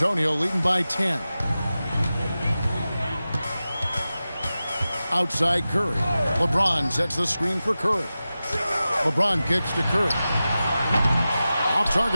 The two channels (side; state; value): both; inverted; correlation -0.94